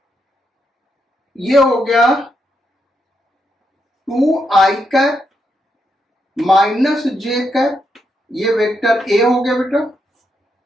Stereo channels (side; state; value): both; normal; correlation 0.81